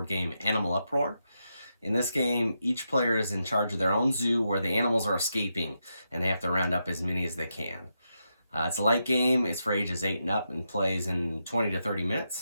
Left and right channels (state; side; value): inverted; both; correlation -0.85